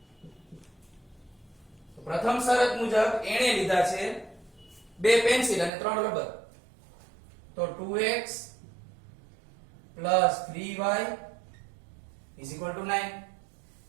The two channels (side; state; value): left; drops out; at 5.7 s